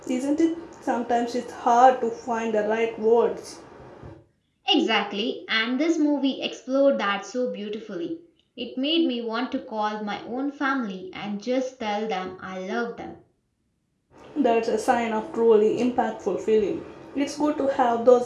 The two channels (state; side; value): identical; both; correlation 1.00